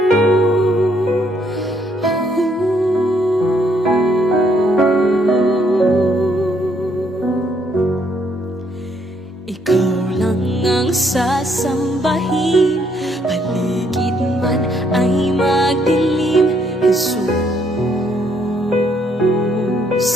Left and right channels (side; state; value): both; normal; correlation 0.69